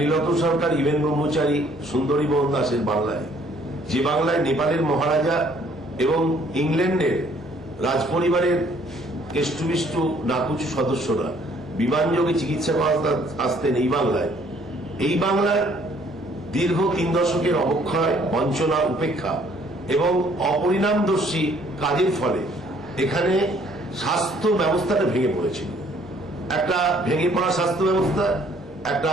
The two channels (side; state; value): both; normal; correlation 0.61